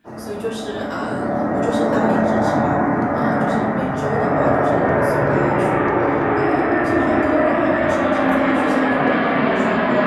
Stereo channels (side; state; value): both; identical; correlation 1.00